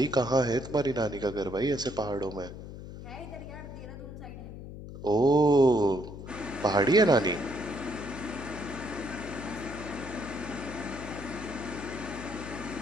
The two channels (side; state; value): left; noise; hum, 11 dB below the sound